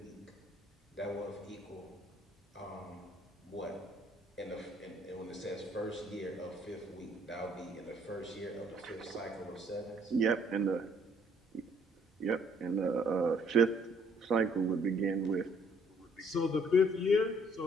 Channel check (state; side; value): normal; both; correlation 0.63